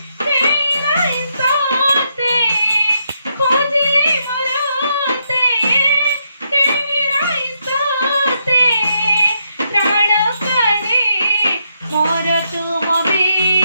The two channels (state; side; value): inverted; both; correlation -0.79